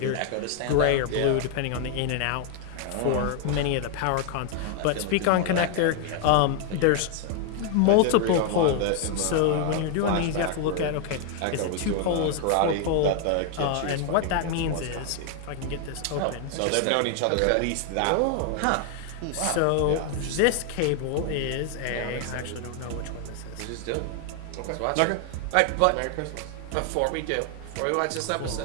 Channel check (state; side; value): different; both; correlation 0.00